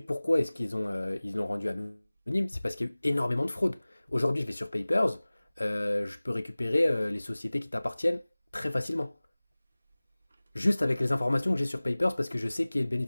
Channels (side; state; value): both; inverted; correlation -0.99